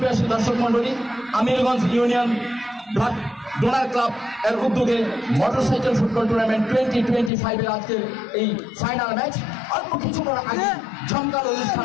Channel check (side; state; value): right; drops out; at 7.3 s